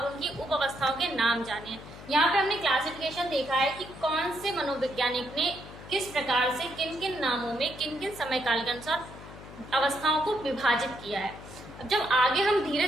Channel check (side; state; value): left; noise; hum, 16 dB below the sound